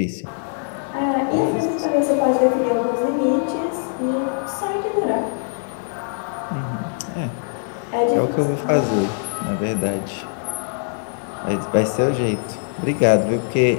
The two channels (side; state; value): right; silent; 64 dB below the other